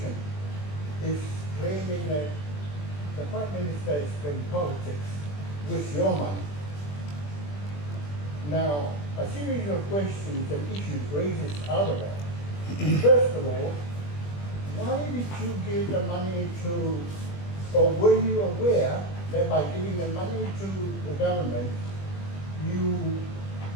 is claiming that the Prime Minister is playing politics with your money. Now, a series of questions and issues raises out of that. First of all, why did you give the money to, or were you aware that by giving the money to the government, you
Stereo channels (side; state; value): right; late; 21 ms